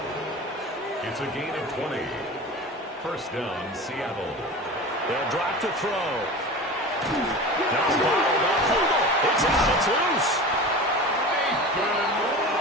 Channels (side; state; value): both; normal; correlation 0.33